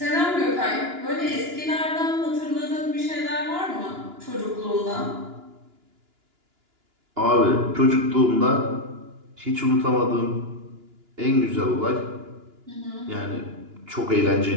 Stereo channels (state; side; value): late; left; 2.9 ms